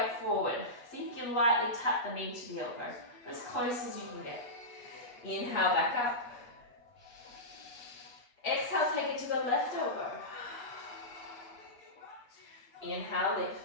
forward. See if you can lightly tap the knee to the elbow, as close as you can get. Inhale, back up. Exhale, take it to the left elbow. Inhale,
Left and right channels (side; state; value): right; late; 8.3 ms